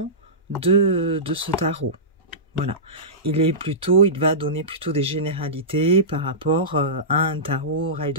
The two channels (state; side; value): normal; both; correlation -0.18